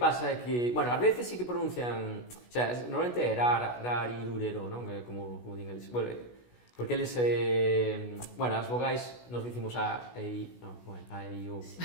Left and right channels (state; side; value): late; right; 16 ms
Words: é que, bueno, ás veces sí que pronuncian, o sea, normalmente é rarirurero, non? Como din eles. Bueno, porque eles, bueno, as vogais nos dicimos a, e, non, bueno, a, e, o,